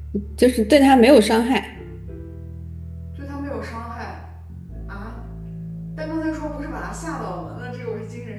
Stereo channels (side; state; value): both; identical; correlation 1.00